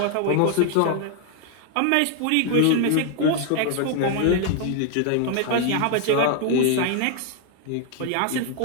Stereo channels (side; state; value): both; different; correlation 0.00